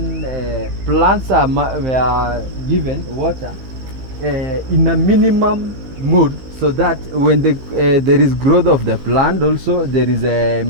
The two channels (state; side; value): late; left; 15 ms